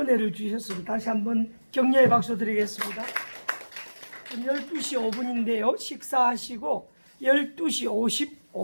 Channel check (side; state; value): both; inverted; correlation -1.00